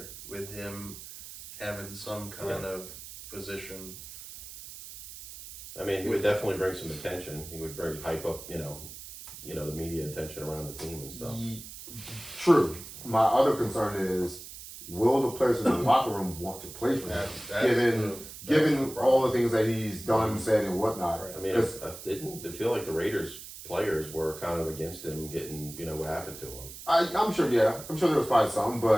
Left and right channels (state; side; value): noise; right; hiss, 13 dB below the sound